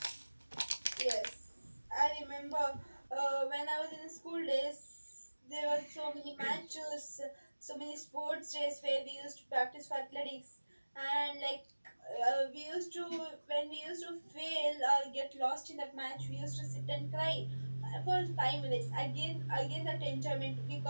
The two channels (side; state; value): both; inverted; correlation -1.00